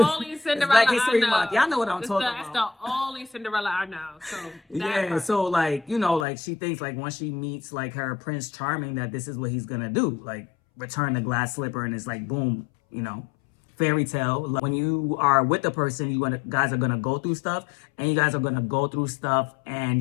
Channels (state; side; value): drops out; right; at 6.2 s